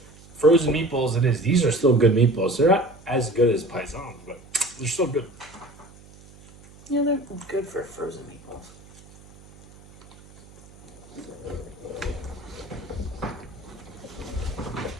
frozen meatballs it is. These are still good meatballs. They're not as good as paisans, but they're still good. Yeah, they're good for frozen meatballs.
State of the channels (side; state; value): right; noise; hum, 22 dB below the sound